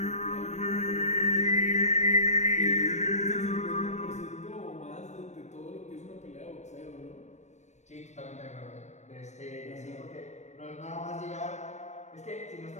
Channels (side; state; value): right; late; 0.34 ms